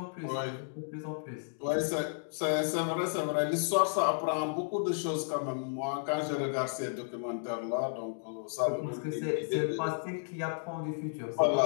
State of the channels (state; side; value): silent; right; digital silence